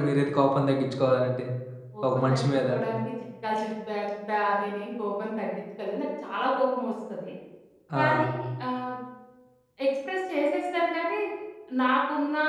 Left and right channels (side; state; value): both; identical; correlation 1.00